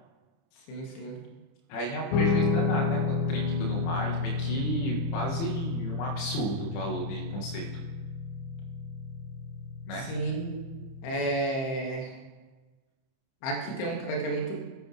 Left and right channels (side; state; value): right; late; 30 ms